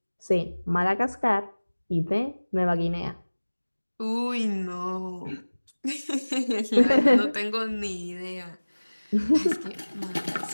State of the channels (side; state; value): both; inverted; correlation -1.00